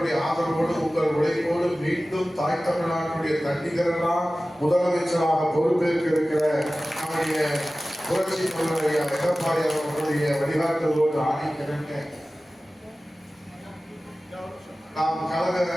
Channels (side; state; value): both; normal; correlation 0.96